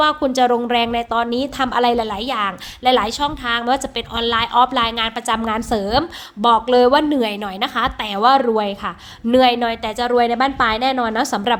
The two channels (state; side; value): identical; both; correlation 1.00